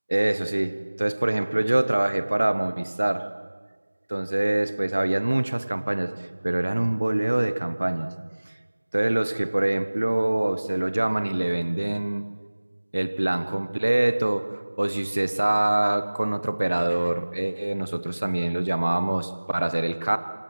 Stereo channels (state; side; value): inverted; both; correlation -1.00